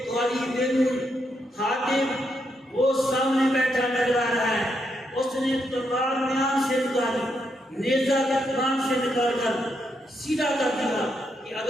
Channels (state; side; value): normal; both; correlation 0.80